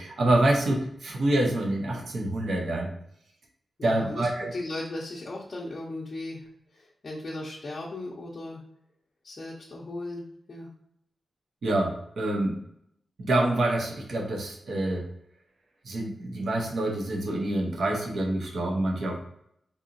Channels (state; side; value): normal; both; correlation 0.89